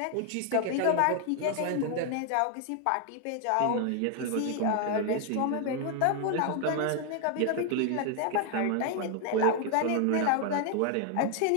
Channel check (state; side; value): different; both; correlation 0.00